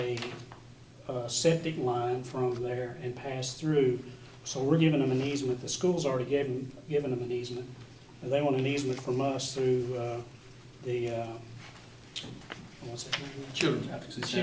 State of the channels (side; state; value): both; identical; correlation 1.00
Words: septic line from there and pass through, so we're giving them an easement. The school's already given them an easement. They want an easement from us through the, what's that name? Children's Advocacy